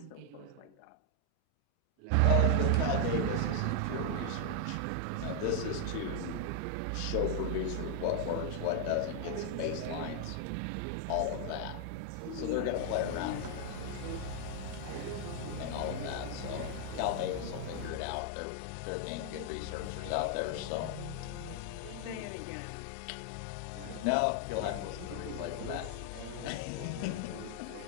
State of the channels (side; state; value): both; different; correlation 0.00